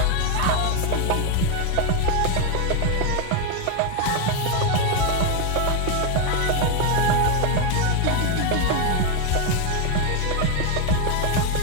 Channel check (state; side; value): different; both; correlation 0.01